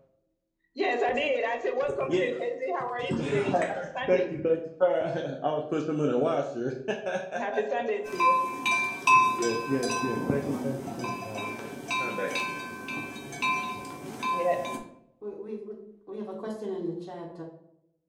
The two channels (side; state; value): both; identical; correlation 1.00